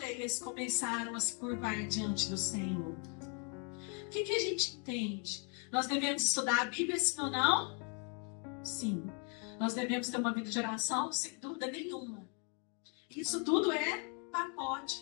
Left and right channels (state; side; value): quieter; right; 38.1 dB